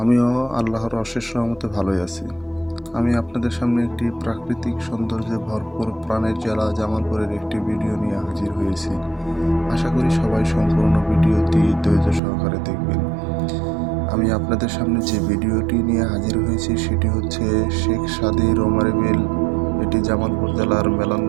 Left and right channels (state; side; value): drops out; left; at 12.2 s